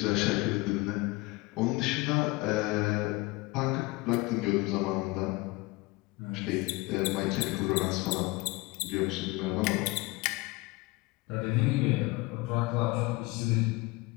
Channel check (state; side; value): quieter; right; 22.9 dB